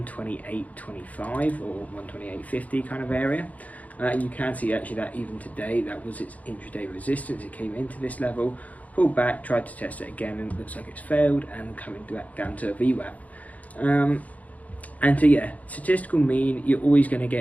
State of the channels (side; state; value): right; late; 0.073 ms